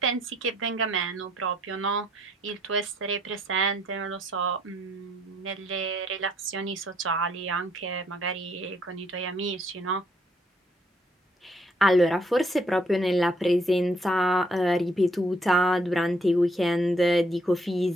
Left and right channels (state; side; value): normal; both; correlation 0.68